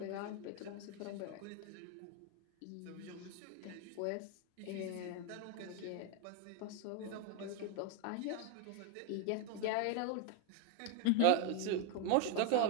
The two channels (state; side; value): different; both; correlation 0.01